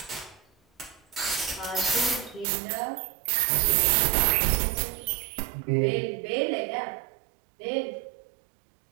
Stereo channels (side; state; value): left; drops out; at 2.5 s